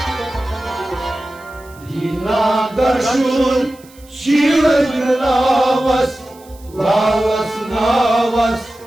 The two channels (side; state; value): right; noise; hiss, 26 dB below the sound